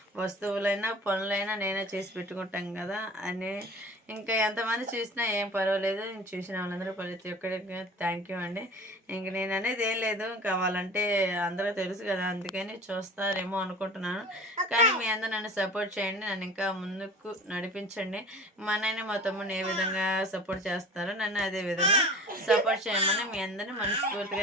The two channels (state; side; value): normal; both; correlation 0.40